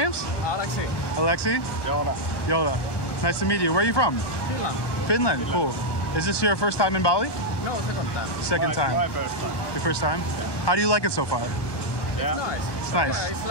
Alexi. Alexi? Yoda. Nice to meet you. Where are you from? Finland. Cool. Is this your first time in Bali? No, second time. Second time. My first time. Your first time? Yeah. How do you like it so far? Yeah. It's nice. It's nice. Yeah, it's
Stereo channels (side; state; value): right; late; 1.2 ms